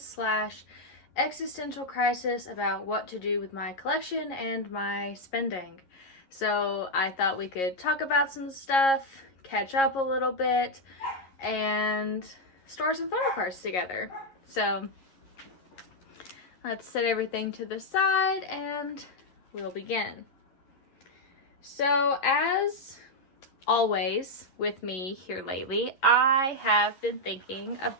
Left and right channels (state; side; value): late; right; 11 ms